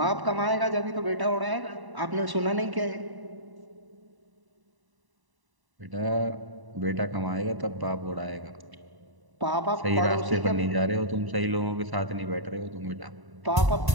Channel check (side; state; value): left; late; 1.0 ms